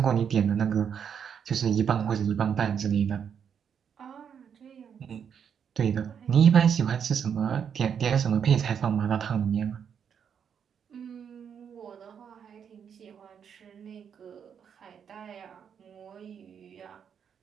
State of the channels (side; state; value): left; quieter; 7.6 dB